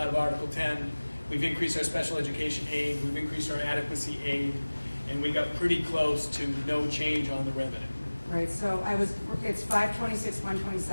of Article 10. We've increased our special education aid, we've increased our adequacy aid, and we got pretty close to no change on the revenue. Right, so it's 526,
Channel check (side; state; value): both; inverted; correlation -1.00